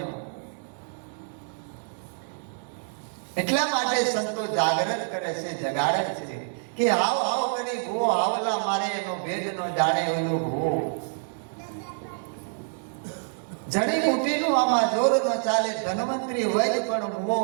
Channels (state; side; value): silent; left; digital silence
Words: એટલા માટે સંતો જાગૃત કરે છે, જગાડે છે કે હાવ હાવ કરી ભૂવો હાવલા મારે એનો ભેદ નો જાણે એનો ભૂવો. જડીબુટીનું આમાં જોર ન ચાલે. ધનવંતરી વૈદ પણ મુવો.